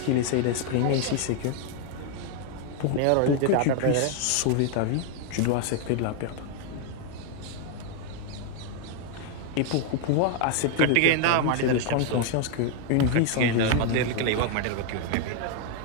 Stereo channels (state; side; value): different; both; correlation 0.01